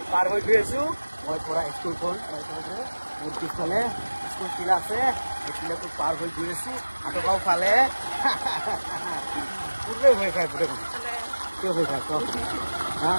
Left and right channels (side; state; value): both; inverted; correlation -1.00